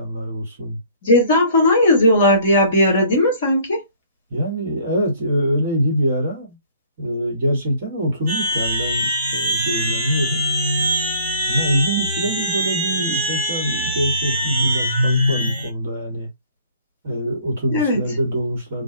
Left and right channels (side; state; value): both; inverted; correlation -0.56